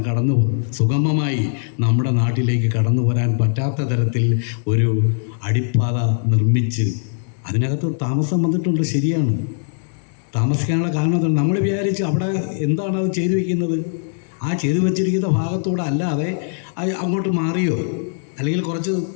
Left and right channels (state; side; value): silent; right; digital silence